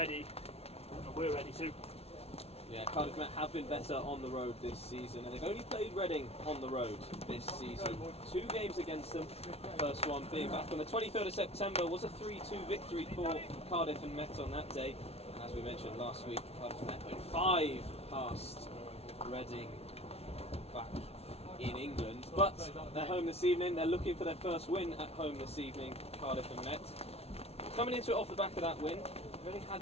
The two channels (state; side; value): late; right; 0.30 ms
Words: and we're ready too. Yeah, Cardiff Met have been better on the road this season, and they've only played Reading on the road this season. 2 games against them. First one being back on the 23rd of September was a 3-2 victory for Cardiff and Met on that day. And as we mentioned last week, Cardiff and Met went 5 past Reading back in England. But they're home this evening. They're looking for their first win at home this evening, Cardiff and Met. Coming into it off the back of that win, they've only had